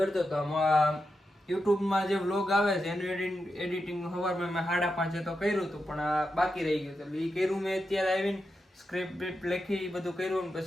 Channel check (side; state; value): both; normal; correlation 0.88